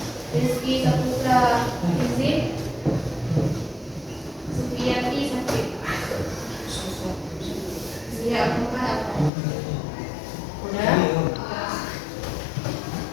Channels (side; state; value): right; drops out; at 9.3 s